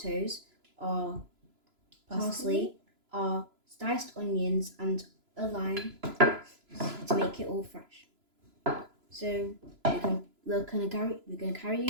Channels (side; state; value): left; late; 3.0 ms